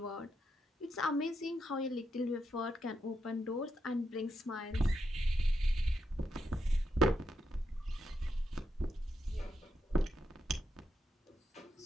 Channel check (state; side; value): normal; both; correlation 0.82